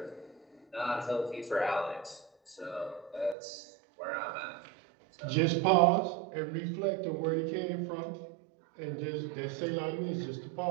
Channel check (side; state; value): left; drops out; at 3.4 s